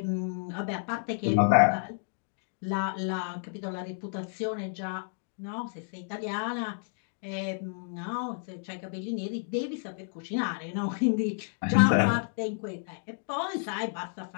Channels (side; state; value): right; silent; digital silence